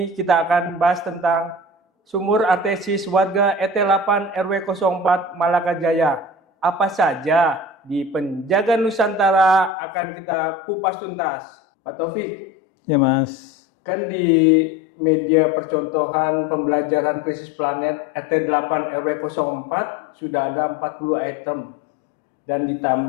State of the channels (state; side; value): drops out; right; at 9.7 s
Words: kita akan bahas tentang sumur artesis warga ET8 RW 04 Malaka Jaya. Apa saja di Penjaga Nusantara akan kita kupas tuntas. Pak Taufik, Ya Mas. kan di media percontohan pembelajaran krisis planet ET8 RW 04 sudah ada 40 item. Dan